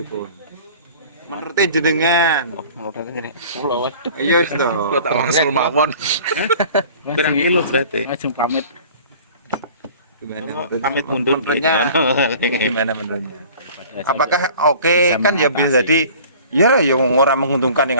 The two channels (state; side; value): inverted; both; correlation -0.46